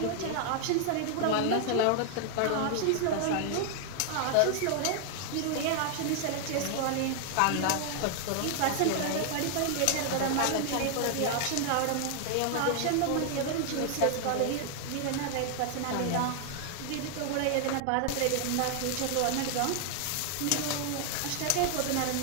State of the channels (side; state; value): both; different; correlation 0.00